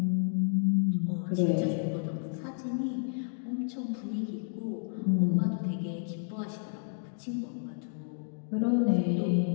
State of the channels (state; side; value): silent; right; digital silence